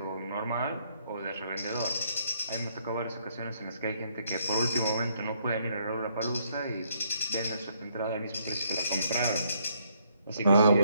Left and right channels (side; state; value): both; inverted; correlation -0.71